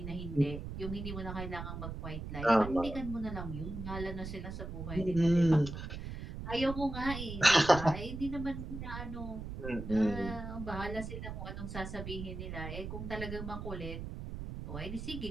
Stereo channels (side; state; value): right; noise; rumble, 7 dB below the sound